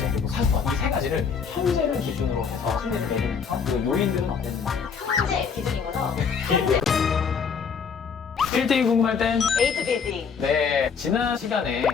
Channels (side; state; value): right; quieter; 6.2 dB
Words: 그리고 상권. 이 세 가지를 현재를 기준으로 해서 순위를 내리면서 그 요인들은 어땠는지. 현재 기준인 거죠? 1등이 궁금할 땐 에이트 빌딩. 네, 지난 시간에